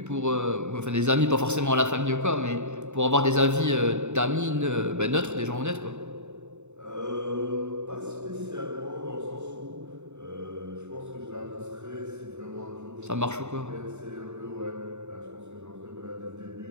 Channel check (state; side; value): late; left; 0.83 ms